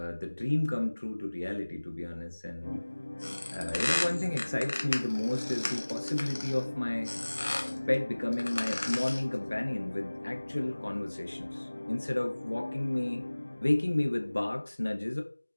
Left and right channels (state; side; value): inverted; both; correlation -1.00